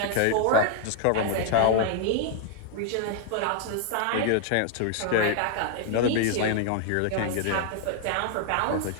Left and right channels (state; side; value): different; both; correlation 0.00